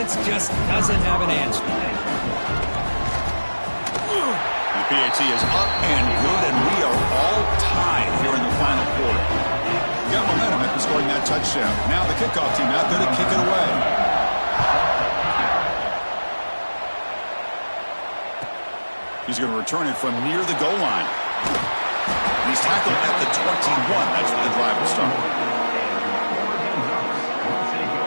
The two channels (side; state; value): both; inverted; correlation -1.00